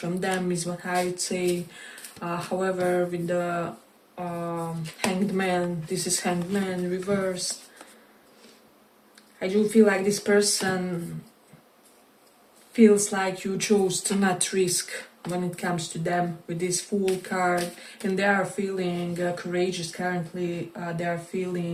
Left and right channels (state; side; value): identical; both; correlation 1.00